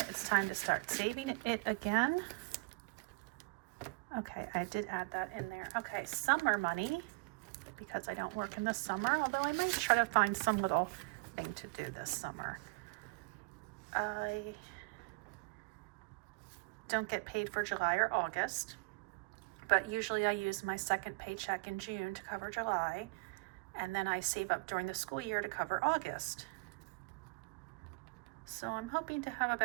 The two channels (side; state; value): left; quieter; 29.2 dB